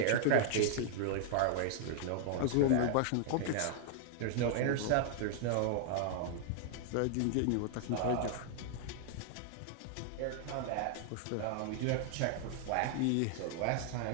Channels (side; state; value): both; different; correlation 0.00